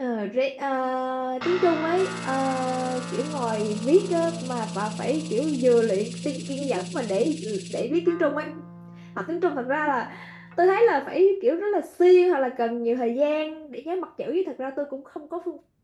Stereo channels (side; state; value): both; identical; correlation 1.00